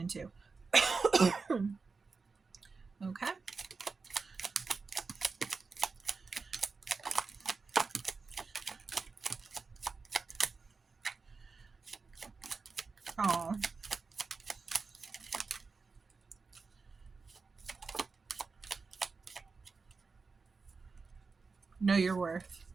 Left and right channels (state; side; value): quieter; left; 4.5 dB